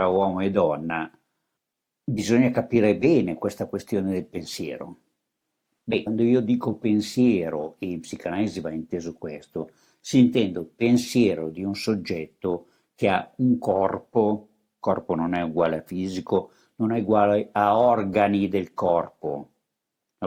uomo e donna bisogna capire bene questa questione del pensiero. Beh, quando io dico pensiero, e in psicanalisi va inteso questo, si intende pensiero di un soggetto che ha un corpo non è uguale a fisico, non è uguale a organi del corpo, è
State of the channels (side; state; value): both; identical; correlation 1.00